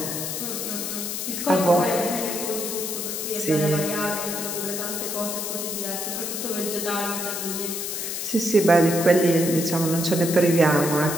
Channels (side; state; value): left; noise; hiss, 4 dB below the sound